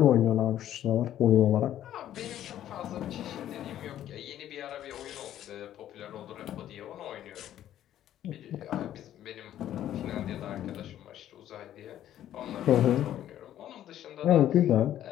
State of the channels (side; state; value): right; quieter; 11.8 dB